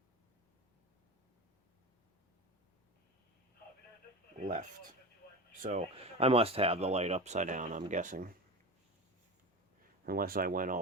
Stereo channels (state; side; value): normal; both; correlation 0.26